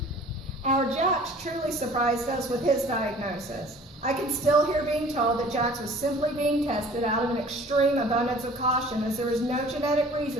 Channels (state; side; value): normal; both; correlation 0.49